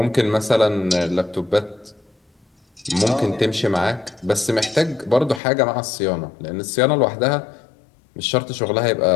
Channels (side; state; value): right; drops out; at 5.4 s